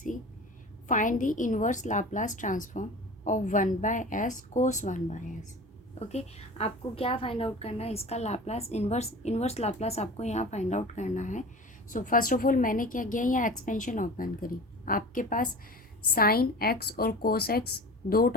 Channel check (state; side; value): normal; both; correlation 0.36